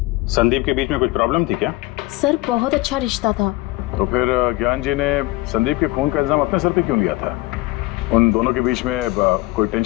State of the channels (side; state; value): right; quieter; 20.1 dB